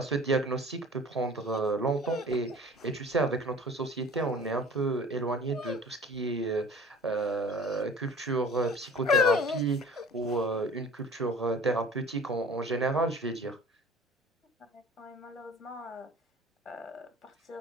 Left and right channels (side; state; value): both; normal; correlation 0.44